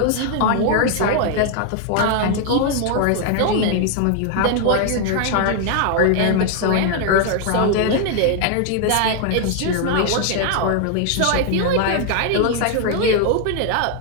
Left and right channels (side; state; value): both; different; correlation 0.00